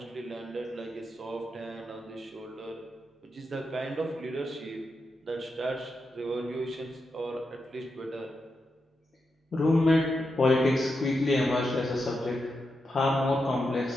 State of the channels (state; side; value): normal; both; correlation 0.86